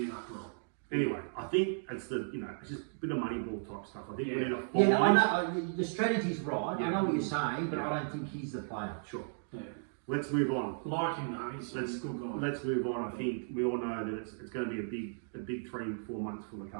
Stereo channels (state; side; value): silent; left; digital silence